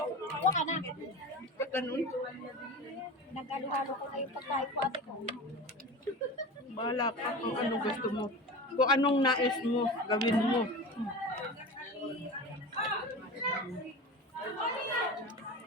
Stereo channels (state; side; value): normal; both; correlation 0.30